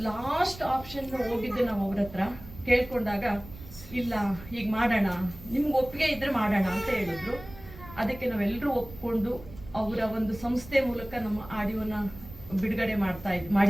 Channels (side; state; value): right; noise; rumble, 16 dB below the sound